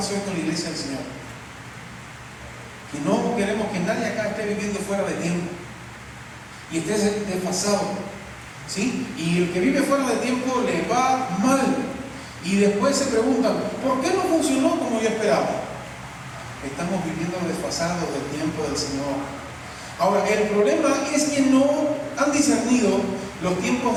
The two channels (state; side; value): identical; both; correlation 1.00